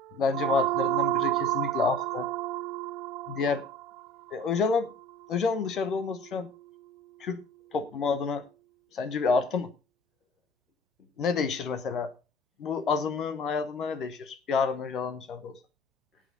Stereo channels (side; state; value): both; normal; correlation 0.46